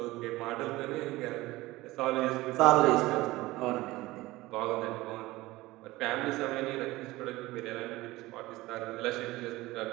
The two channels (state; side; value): quieter; left; 19.0 dB